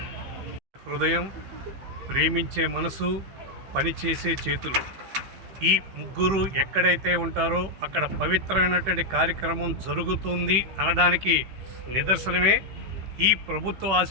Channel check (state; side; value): late; left; 15 ms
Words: హృదయం, ప్రేమించే మనసు, పనిచేసే చేతులు, ఈ ముగ్గురు ఎక్కడైతే ఉంటారో అక్కడ పవిత్రమైనటువంటి కార్యక్రమం జరుగుతుంది అనడానికి నిదర్శనమే. ఈ ప్రభుత్వ